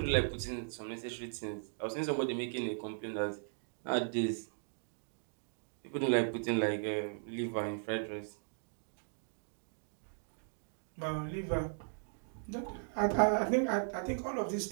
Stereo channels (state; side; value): silent; left; digital silence